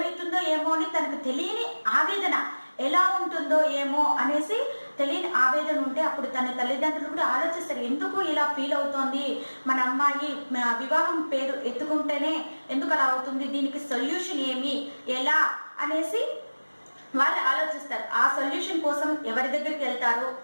ఏమో అని తనకు తెలియని ఆవేదన, ఎలా ఉంటుందో ఏమో అనేసి తెలియని ఆవేదన ఉంటే అప్పుడు తన తల్లిదండ్రులు కూడా ఆలోచిస్తారు, ఎందుకు ఇలా ఫీల్ అవుతోంది మన అమ్మాయి, వివాహం పేరు ఎత్తుకుంటేనే ఎందుకు అలా అవుతుంది, దీనికి సొల్యూషన్ ఏమి, ఎలా అనేసి వాళ్ళు ఆలోచిస్తారు. ఆ సొల్యూషన్ కోసం ఎవరి దగ్గరికి వెళ్తారు,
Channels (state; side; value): inverted; both; correlation -1.00